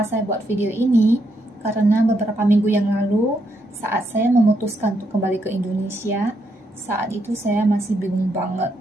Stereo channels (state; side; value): normal; both; correlation 0.78